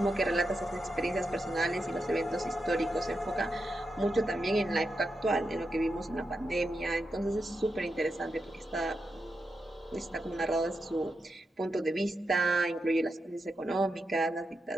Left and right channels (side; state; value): both; normal; correlation 0.87